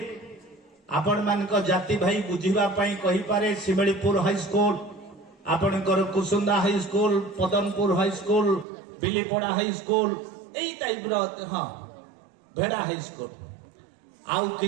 आपण मानक जाति भाई बुझिबा पई कहि पारे शिमळीपुर हाई स्कूल आपणकर Kusunda high school Padanpur high school Bilipada high school एई टाइप रो हां भेड़ा हाई स्कूल आउ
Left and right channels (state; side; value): drops out; left; at 8.7 s